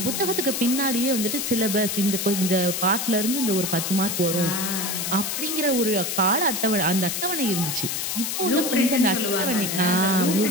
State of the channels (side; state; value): left; noise; hiss, 2 dB below the sound